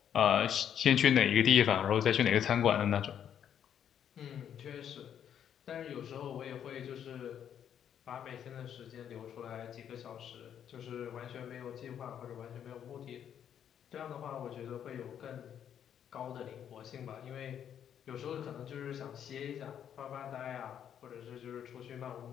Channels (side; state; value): right; quieter; 9.2 dB